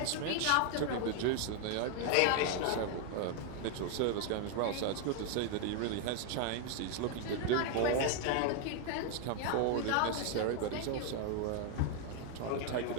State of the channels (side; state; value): both; different; correlation 0.00